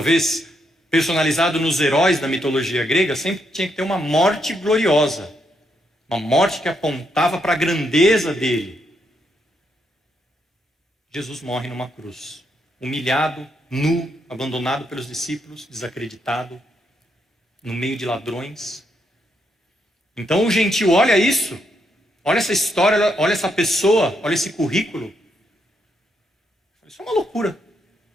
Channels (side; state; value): both; normal; correlation 0.78